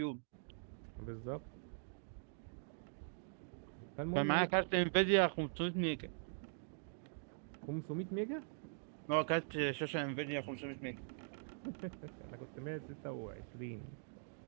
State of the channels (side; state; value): left; silent; digital silence